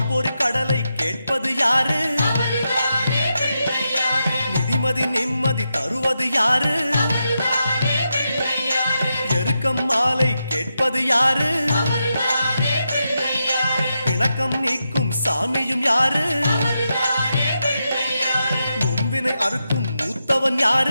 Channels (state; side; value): inverted; both; correlation -0.86